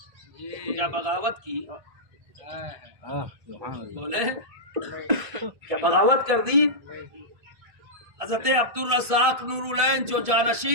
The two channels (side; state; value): left; late; 1.7 ms